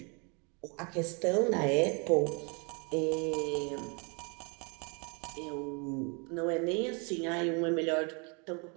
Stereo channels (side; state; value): left; quieter; 33.9 dB